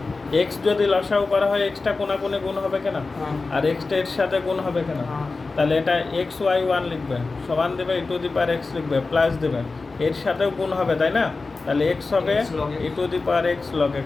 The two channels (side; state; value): right; quieter; 3.8 dB